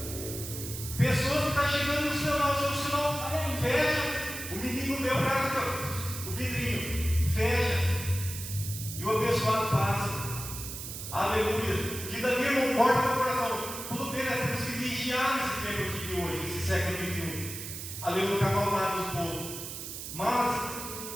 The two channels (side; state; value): right; noise; hiss, 8 dB below the sound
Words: pessoas que estão chegando no sinal, o seu sinal fecha, o menino vê o cara, o vidrinho, fecha, e o abençoado passa, aleluia. Que dali não importa no coração, tudo bem, nós temos que vigiar nesse tempo aqui de hoje, nesse século XXI, aleluia, com a maldade do povo. Mas